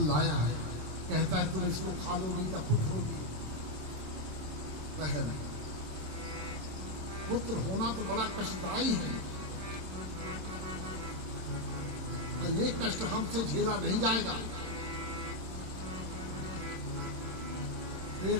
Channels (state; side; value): late; left; 27 ms